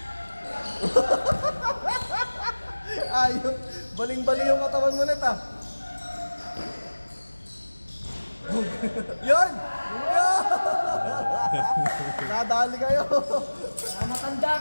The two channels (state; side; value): inverted; both; correlation -1.00